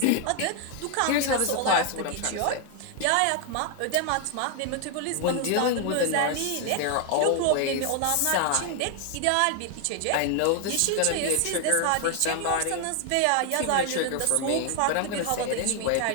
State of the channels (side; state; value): both; different; correlation 0.00